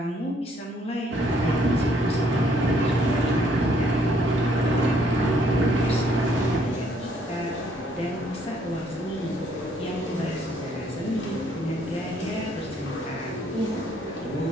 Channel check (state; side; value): normal; both; correlation 0.66